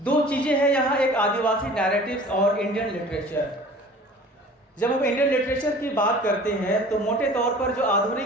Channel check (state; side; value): normal; both; correlation 0.45